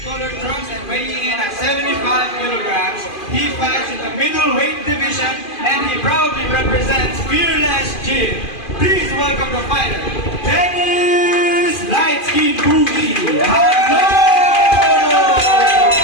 Weighing in at 75 kilograms, he fights in the middleweight division and he proudly represents Fearless Gym. Please welcome the fighter, Dennis Lightskin Boogie. Hello!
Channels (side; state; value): right; late; 2.5 ms